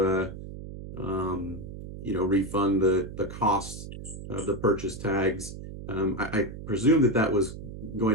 refund the costs of the purchase tags. I presume that was going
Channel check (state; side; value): noise; right; hum, 11 dB below the sound